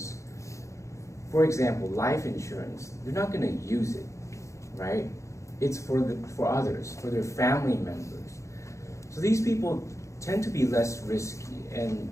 for example, life insurance, they're not going to use it, right? It's for others, for their family members. So these people tend to be less risky, and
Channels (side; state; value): right; late; 0.15 ms